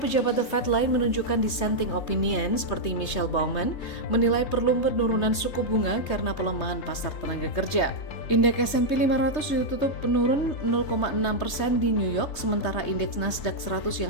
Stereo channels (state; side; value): late; right; 3.2 ms